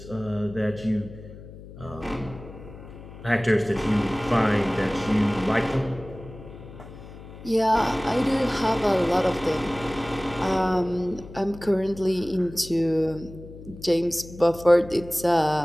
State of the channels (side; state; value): left; noise; hum, 16 dB below the sound